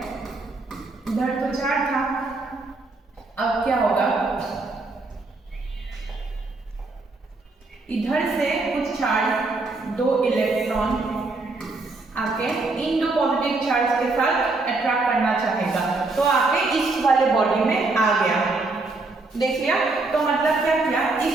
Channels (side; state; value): left; quieter; 3.4 dB